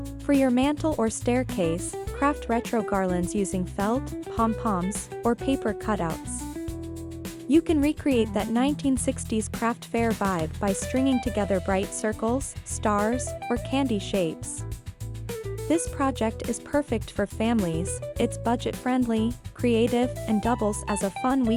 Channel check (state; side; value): identical; both; correlation 1.00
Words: For your mantel or staircase, craft retro garlands using felt, pom-poms, or paper cutouts. You can recreate that 1960s craft fair vibe by stringing together bright circles, stars, or candy shapes. This project is perfect for families, it's budget-friendly, creative, and doubles as a fun